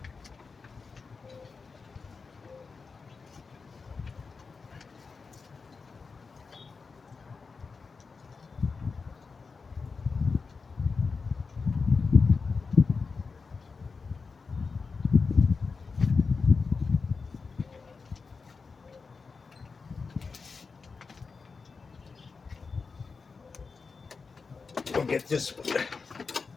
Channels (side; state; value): right; quieter; 4.7 dB